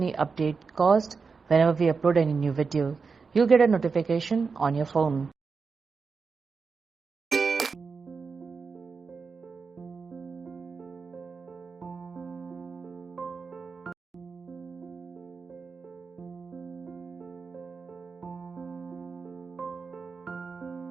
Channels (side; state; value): left; quieter; 5.0 dB